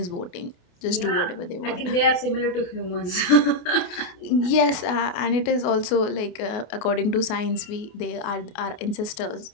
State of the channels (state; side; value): late; right; 28 ms